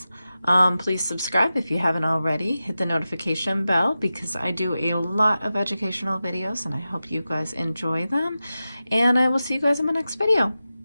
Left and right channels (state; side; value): inverted; both; correlation -0.93